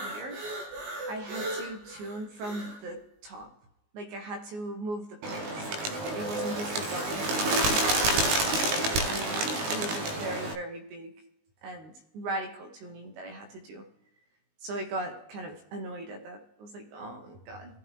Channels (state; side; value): late; left; 19 ms